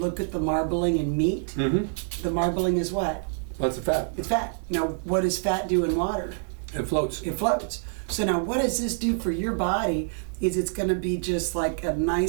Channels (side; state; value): left; silent; 61 dB below the other